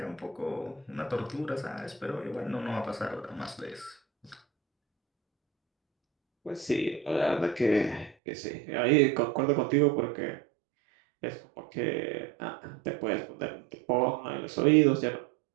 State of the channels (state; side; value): drops out; left; at 8.2 s